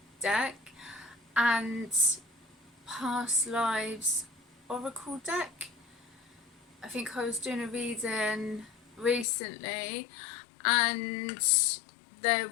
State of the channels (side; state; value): right; drops out; at 9.2 s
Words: deck and Past Lives Oracle deck. I think I was doing a reading recently and there